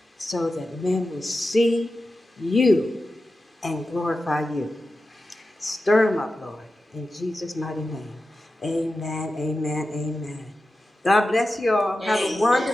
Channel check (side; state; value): both; normal; correlation 0.92